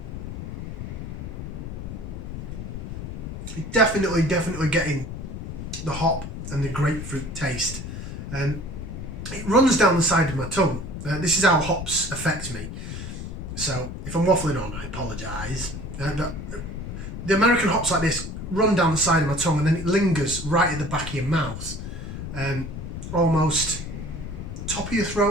You're definitely getting the hop and the grapefruit taste. It runs down the side of my tongue. This is how hops affect me. So, if I'm waffling on, I apologise. But the American hops like this run down the side of my tongue and then it lingers right at the back of your mouth. Almost top of your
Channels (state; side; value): noise; left; rumble, 8 dB below the sound